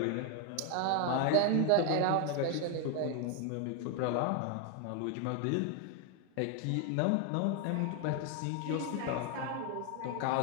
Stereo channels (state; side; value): different; both; correlation 0.01